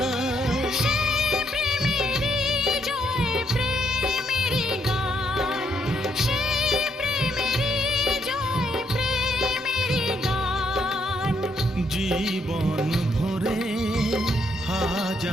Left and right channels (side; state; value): both; normal; correlation 0.74